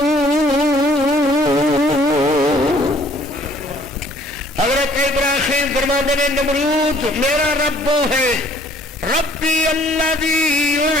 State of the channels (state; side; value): normal; both; correlation 0.58